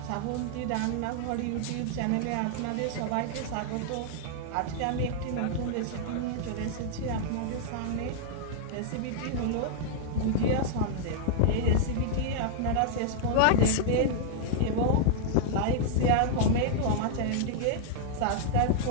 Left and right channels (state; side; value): different; both; correlation -0.01